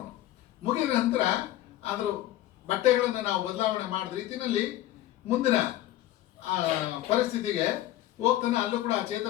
ಮುಗಿದ ನಂತರ ಅದ್ರ ಬಟ್ಟೆಗಳನ್ನು ನಾವು ಬದಲಾವಣೆ ಮಾಡಿದ ರೀತಿಯಲ್ಲಿ ಮುಂದಿನ ಪರಿಸ್ಥಿತಿಗೆ ಹೋಗ್ತಾನೆ. ಅಲ್ಲೂ ಕೂಡ ಆ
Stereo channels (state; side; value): quieter; right; 14.3 dB